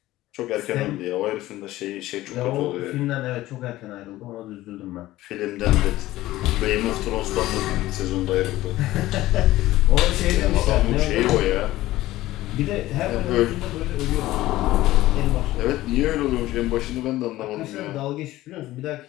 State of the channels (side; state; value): right; quieter; 16.3 dB